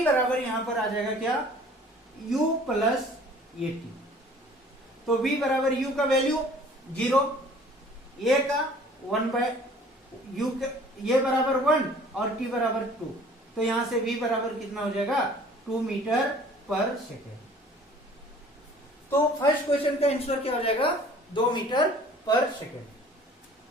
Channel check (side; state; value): both; normal; correlation 0.51